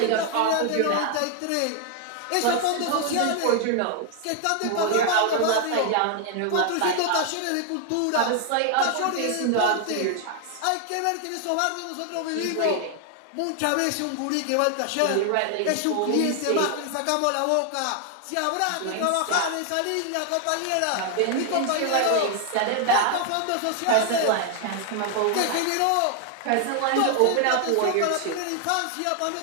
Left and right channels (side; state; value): both; different; correlation 0.00